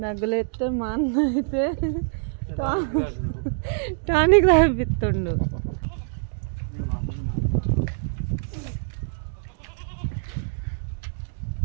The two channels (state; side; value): silent; left; digital silence